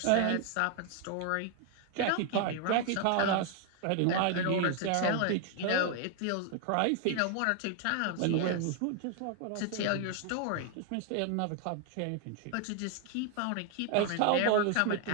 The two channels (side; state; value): both; different; correlation 0.00